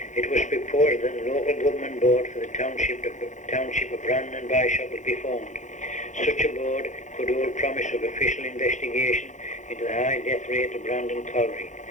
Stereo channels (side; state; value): right; late; 0.35 ms